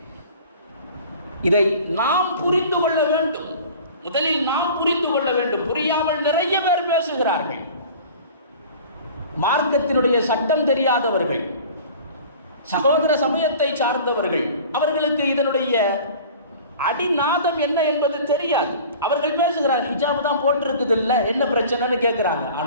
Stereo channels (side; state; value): both; inverted; correlation -0.43